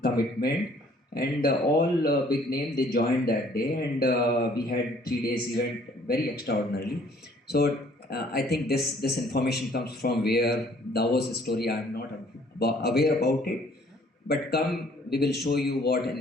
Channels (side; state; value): both; normal; correlation 0.59